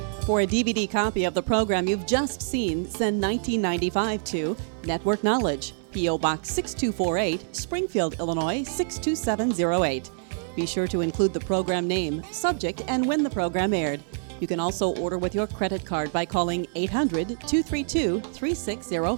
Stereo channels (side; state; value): left; silent; digital silence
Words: For a DVD copy of the program you've just seen, send 1995 to Network Knowledge, P.O. Box 6248, Springfield, Illinois 62708. Be sure to include the program name, subject, and when the program aired. You can also order with your credit card by calling